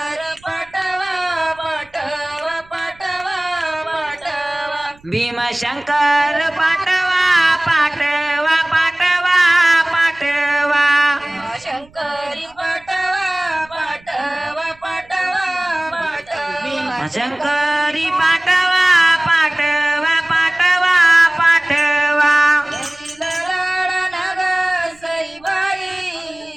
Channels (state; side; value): noise; right; rumble, 28 dB below the sound